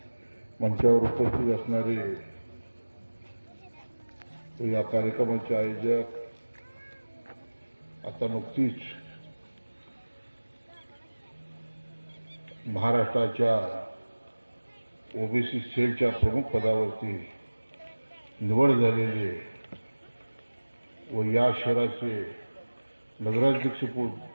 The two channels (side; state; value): both; inverted; correlation -1.00